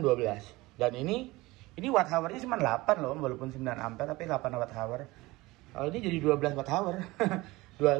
12. Dan ini watt hour-nya cuma 8 loh, walaupun 9 ampere tapi 8 watt hour. Kalau ini jadi 12 watt hour.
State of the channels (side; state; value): left; quieter; 20.7 dB